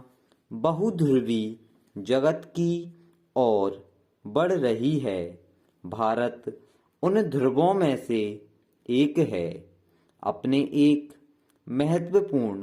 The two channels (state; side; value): identical; both; correlation 1.00